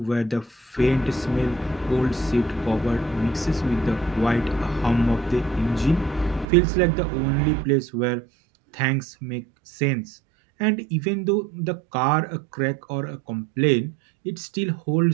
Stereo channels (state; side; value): drops out; left; at 6.5 s